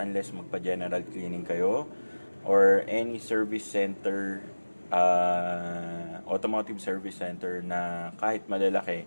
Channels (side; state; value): both; inverted; correlation -1.00